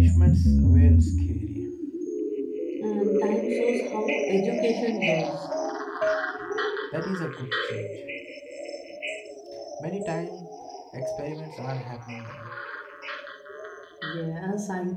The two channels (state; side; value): identical; both; correlation 1.00